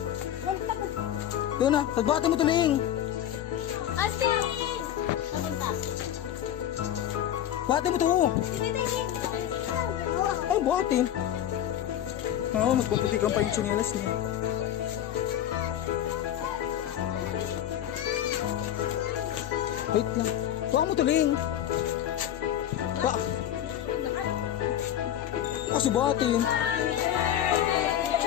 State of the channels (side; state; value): right; quieter; 11.1 dB